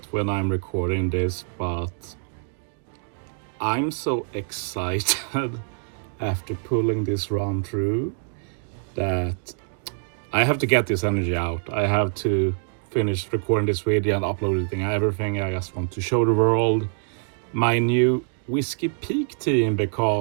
when I'm recording this, but I'm so excited after pulling this run through that I have to get this energy out. I have to finish recording this video and uploading everything. I just want to show the world my new Whiskey Peak team,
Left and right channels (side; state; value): left; silent; 57 dB below the other